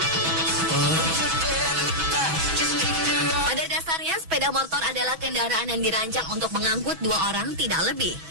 Pada dasarnya, sepeda motor adalah kendaraan yang dirancang untuk mengangkut 2 orang tidak lebih.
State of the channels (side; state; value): left; late; 6.1 ms